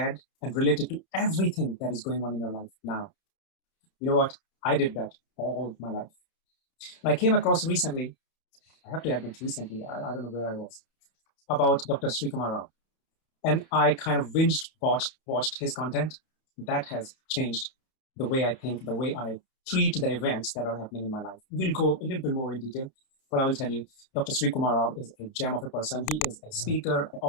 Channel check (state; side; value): late; right; 31 ms